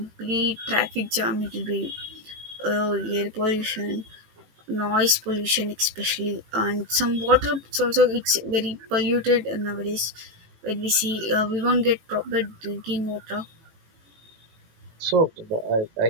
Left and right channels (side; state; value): left; late; 18 ms